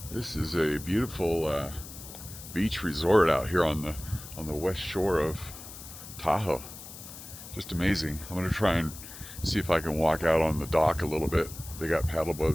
This is a beautiful beach resort out here on the west shore of Tahoe. Just amazing. I'm gonna try and see if I can walk out on the dock a little bit. They got paddle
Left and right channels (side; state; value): left; noise; hiss, 14 dB below the sound